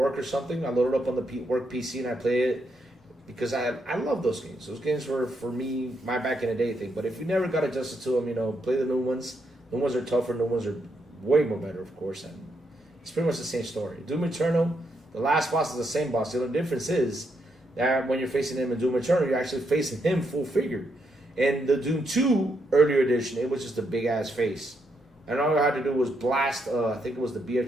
or something. I load it up on the work PC and I play it because I love those games. Those games were, for me, my back in the day thing. But if you never got adjusted to them, you know, play the new ones. New ones are tougher. New ones are way more better, of course. And it's pretty much the same story. Doom Eternal, the last boss is the same boss. The only difference is that when you're facing him in Doom Eternal, you're actually facing him full figure. In the Doom 2 earlier edition, it was just a big-ass face. And all you had to do was blast, I think it was the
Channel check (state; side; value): normal; both; correlation 0.79